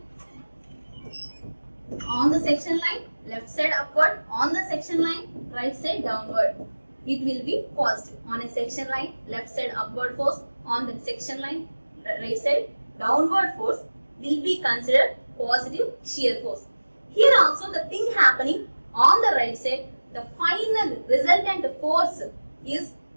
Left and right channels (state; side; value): inverted; both; correlation -1.00